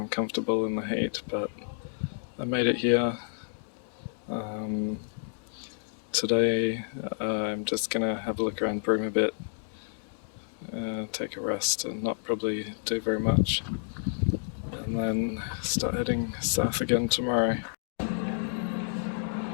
in the heat, but I made it here. Today I'm just going to have a look around Broome a bit, take a rest and not probably do very much, and then start heading south again tomorrow.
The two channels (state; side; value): silent; right; digital silence